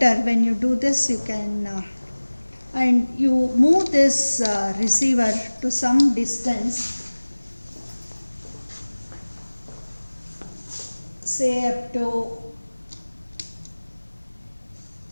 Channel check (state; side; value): inverted; both; correlation -1.00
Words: When you do this, you can and you move this receiver to some distance, say up to